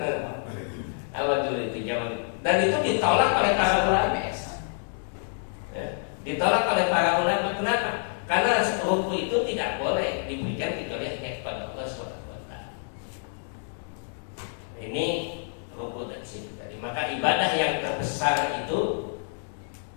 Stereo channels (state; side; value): silent; right; 60 dB below the other